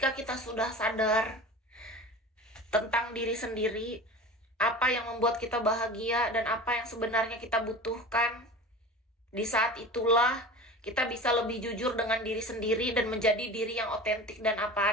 kita sudah sadar tentang diri sendiri, apa yang membuat kita bahagia dan apa yang sebenarnya kita butuhkan, di saat itulah kita bisa lebih jujur dengan diri sendiri dan menjadi diri yang otentik dan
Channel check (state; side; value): normal; both; correlation 0.35